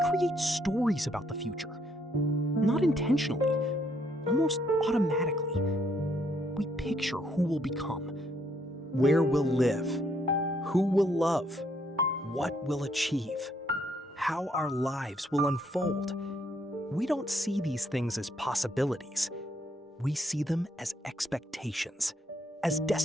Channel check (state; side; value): normal; both; correlation 0.71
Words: stories about the future. Not intentionally, almost automatically. We picture who we'll become, where we'll live, who we'll love, what we'll achieve, how our lives will unfold. We don't see these things as possibilities. We see them as expectations, as